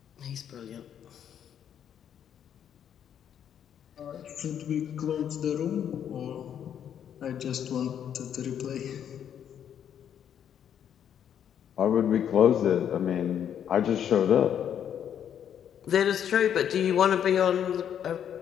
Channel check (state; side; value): quieter; right; 9.2 dB